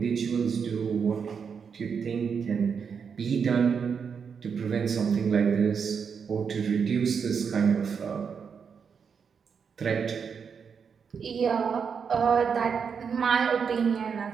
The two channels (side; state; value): left; quieter; 6.4 dB